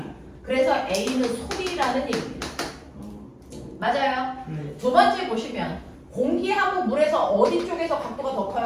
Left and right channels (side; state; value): both; identical; correlation 1.00